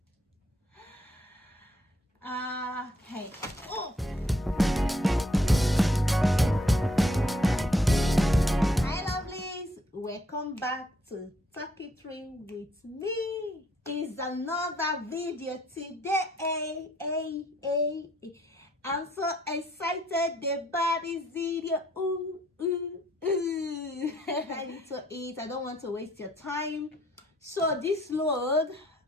Okay. Oh. Hi lovelies, welcome back to Talk It Through with me. It's another video today. I'm so excited about this video. I need to eat. I don't want to waste your time. So this load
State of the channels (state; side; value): normal; both; correlation 0.68